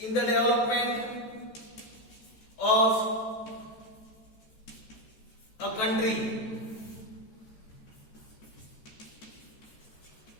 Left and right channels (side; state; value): right; late; 14 ms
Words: the development of a country.